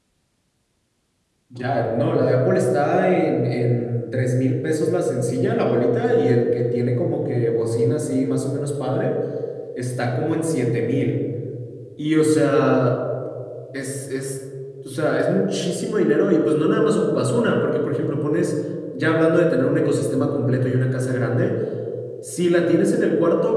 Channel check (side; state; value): both; identical; correlation 1.00